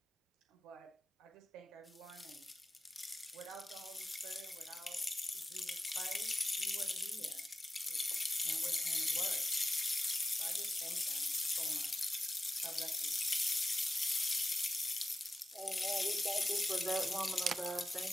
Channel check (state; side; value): normal; both; correlation 0.94